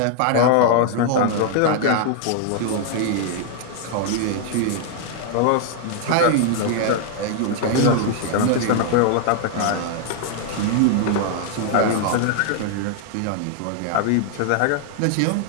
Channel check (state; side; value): different; both; correlation 0.00